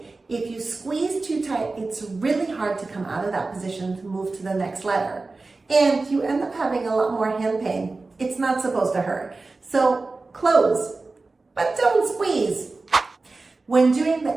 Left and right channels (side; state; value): left; quieter; 3.6 dB